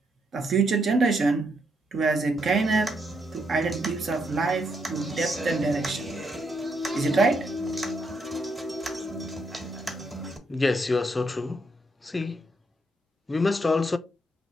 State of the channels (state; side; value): normal; both; correlation 0.77